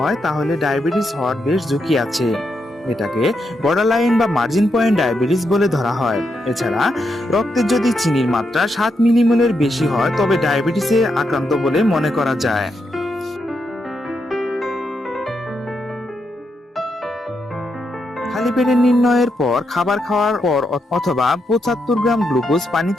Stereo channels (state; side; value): normal; both; correlation 0.82